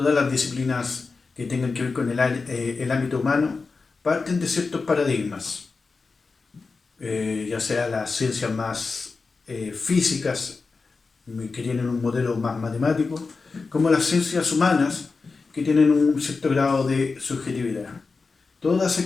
las disciplinas que tengan que ver con el ámbito humano, parten de ciertos paradigmas, ya sea las ciencias más físicas, que tienen un modelo más matemático, como las ciencias humanas, que tienen un cierto grado de subjetividad. Todas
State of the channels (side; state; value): right; quieter; 4.3 dB